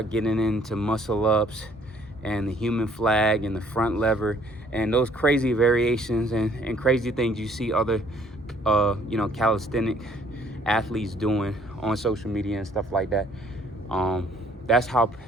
getting into muscle ups and the human flag and the front lever and those crazy variations and crazy things you see other calisthenic athletes doing on social media and stuff like that. That's how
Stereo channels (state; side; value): normal; both; correlation 0.61